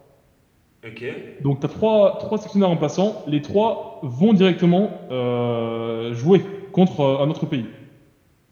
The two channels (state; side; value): identical; both; correlation 1.00